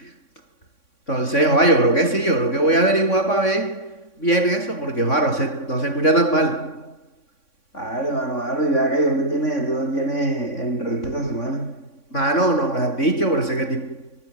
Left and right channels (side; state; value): right; late; 3.6 ms